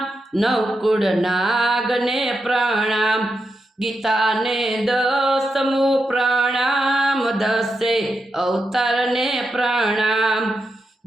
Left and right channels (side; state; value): both; normal; correlation 0.87